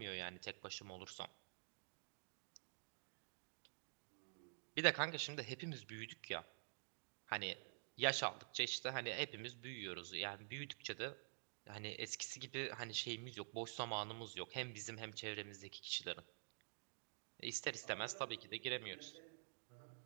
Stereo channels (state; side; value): silent; left; digital silence